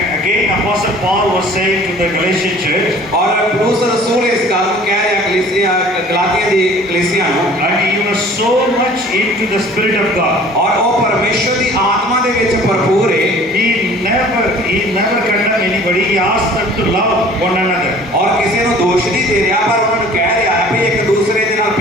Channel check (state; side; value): normal; both; correlation 0.49